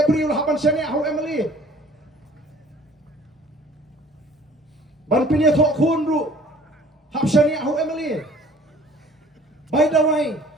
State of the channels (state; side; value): normal; both; correlation 0.52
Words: priu la haban shane au emily ban pinya thok khun ru hab shane au emily bai dawai